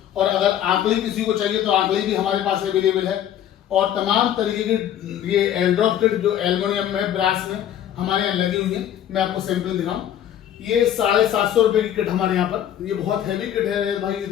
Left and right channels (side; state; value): right; quieter; 10.7 dB